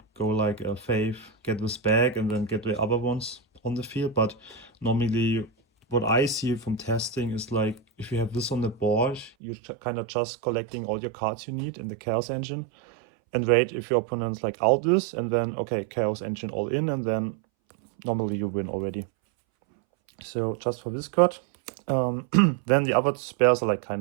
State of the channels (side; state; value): left; drops out; at 9.3 s